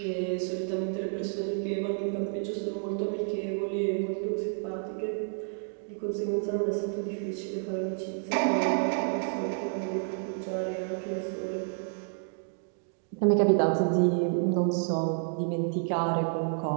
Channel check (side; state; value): left; silent; 58 dB below the other